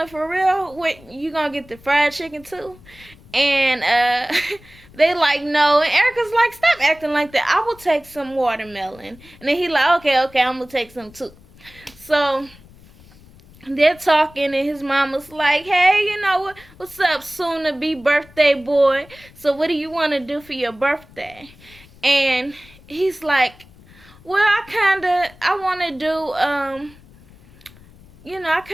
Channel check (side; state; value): left; noise; rumble, 24 dB below the sound